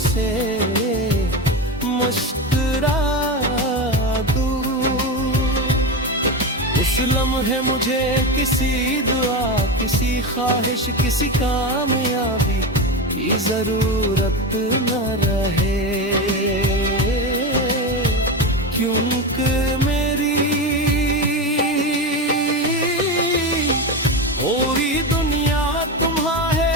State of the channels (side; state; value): both; normal; correlation 0.19